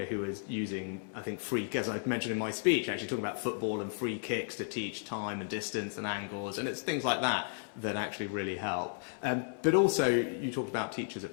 who was using, I think, as I mentioned in my speech, actually talking about football and free kicks to teach time and distance and angles, and it's things like that that actually really help. But also, you talked about teachers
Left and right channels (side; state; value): right; silent; 55 dB below the other